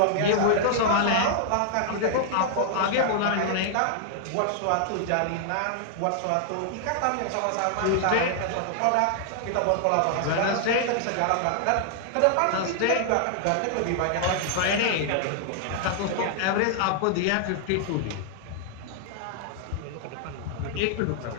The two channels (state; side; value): different; both; correlation -0.01